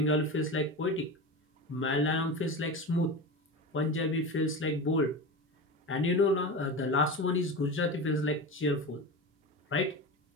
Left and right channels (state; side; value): normal; both; correlation 0.25